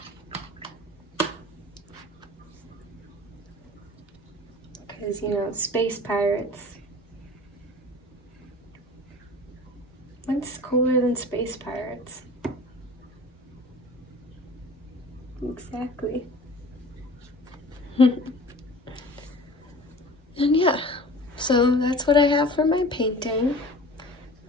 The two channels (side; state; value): both; normal; correlation 0.41